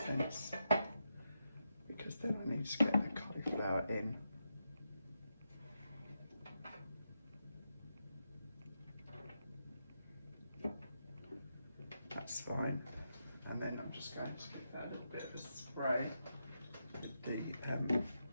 because then I need to get the cauliflower in. That's fine. And then I'm just going to give that a little bit of a spray with the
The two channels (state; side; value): inverted; both; correlation -0.85